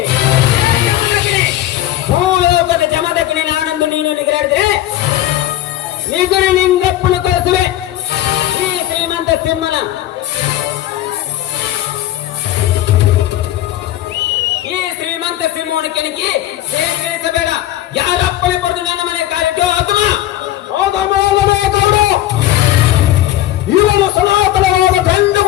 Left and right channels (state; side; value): quieter; right; 13.8 dB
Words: ಭೂಲೋಕದ ಜಮದಗ್ನಿ ನಾನಂದು ನೀನು ನಿಗರಾಡಿದ್ರೆ ನಿಗುರು ಲಿಂಗಪ್ಪನ ಕರೆಸುವೆ. ಈ ಶ್ರೀಮಂತ ಸಿಂಹನ ಈ ಶ್ರೀಮಂತ ಸಿಂಹವನ್ನು ಕೆಣಕಿ ಸೇರಿಸಬೇಡ. ಯಾರಪ್ಪನೆ ಪಡೆದು ನನ್ನ ಮನೆ ಕಾಲಿಟ್ಟು ಆತ್ಮ ಗೌಡ ಇವನು ಸನಾತನವಾದ ಗಂಡು